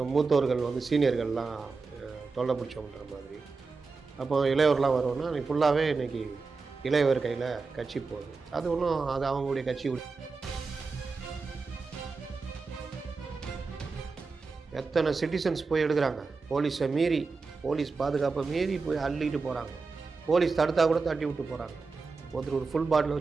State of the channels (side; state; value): left; quieter; 4.4 dB